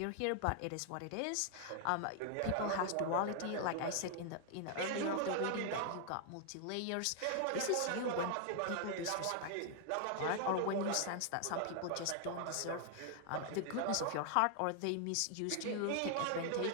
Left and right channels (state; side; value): different; both; correlation 0.00